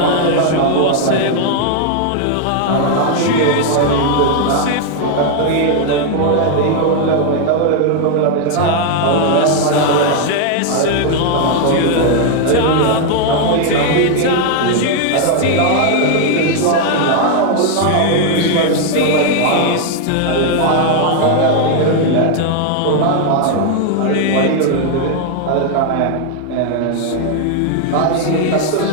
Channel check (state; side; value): different; both; correlation 0.00